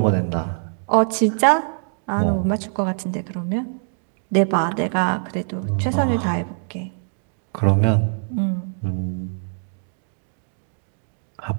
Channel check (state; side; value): silent; left; digital silence